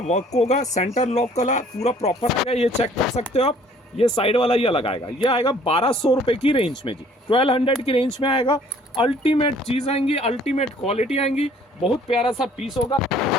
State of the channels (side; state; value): both; normal; correlation 0.57